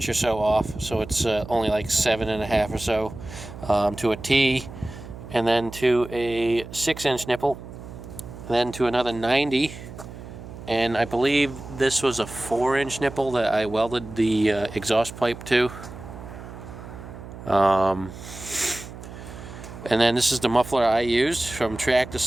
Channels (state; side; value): noise; right; hum, 13 dB below the sound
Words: or so off, so it's only like 7.5 or so, to a T, and then to a 6-inch nipple, then to another 90, and I believe this was a 4-inch nipple that I welded the exhaust pipe to. And then this is the muffler I used from Tractor